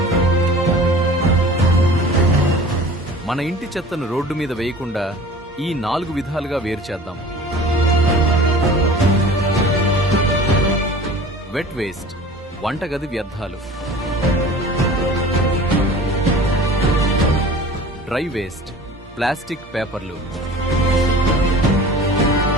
మన ఇంటి చెత్తను రోడ్డు మీద వేయకుండా ఈ 4 విధాలుగా వేరు చేద్దాం. వెట్ వేస్ట్, వంటగది వ్యర్థాలు. డ్రై వేస్ట్, ప్లాస్టిక్, పేపర్లు.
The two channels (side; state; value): both; normal; correlation 0.42